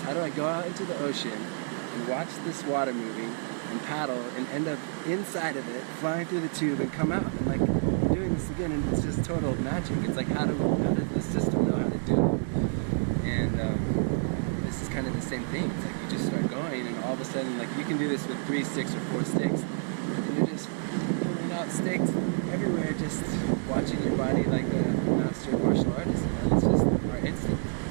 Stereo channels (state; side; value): silent; left; 59 dB below the other